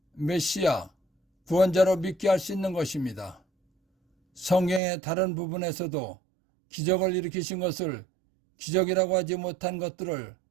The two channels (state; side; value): drops out; left; at 4.8 s